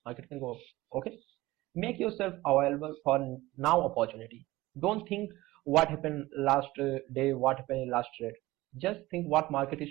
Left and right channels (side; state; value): left; quieter; 18.5 dB